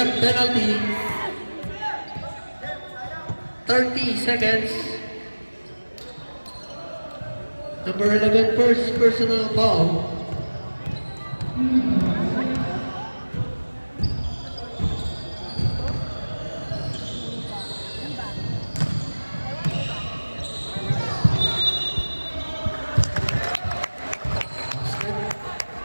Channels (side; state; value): both; inverted; correlation -1.00